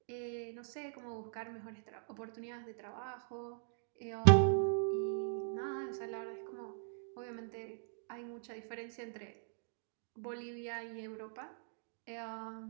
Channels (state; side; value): silent; left; digital silence